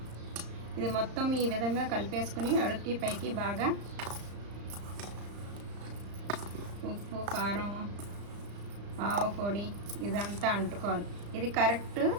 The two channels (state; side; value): late; left; 35 ms